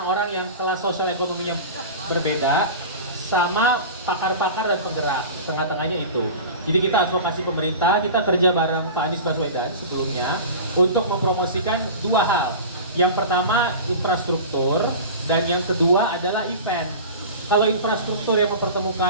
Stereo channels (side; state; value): both; inverted; correlation -0.33